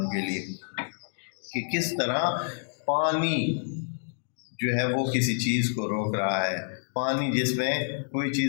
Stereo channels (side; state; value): right; silent; digital silence